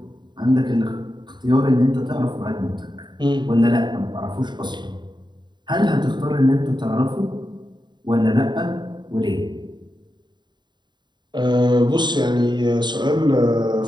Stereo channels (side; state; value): left; late; 0.22 ms